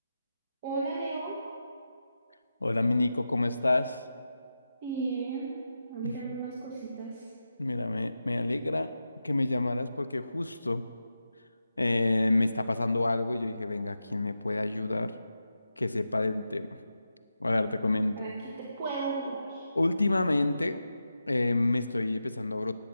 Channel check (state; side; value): inverted; both; correlation -0.91